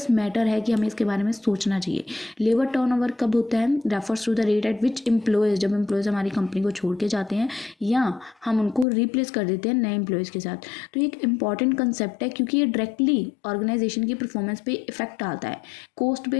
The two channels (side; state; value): right; drops out; at 8.8 s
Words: मैटर है कि हमें इसके बारे में सोचना चाहिए। लेबर टर्नओवर कब होता है, refers to the rate at which employees, जब एम्प्लॉयज़ हमारी कंपनी को छोड़ के जाते हैं या हम उनको रिप्लेस कर देते हैं नए एम्प्लॉयज़ के साथ। तो एक इंपॉर्टेंट कंसेप्ट है क्योंकि ये डायरेक्टली ऑर्गेनाइजेशन की परफॉर्मेंस पे इफेक्ट डालता है, कॉस्ट